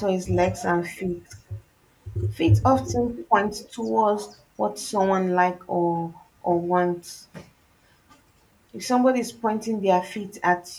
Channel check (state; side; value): identical; both; correlation 1.00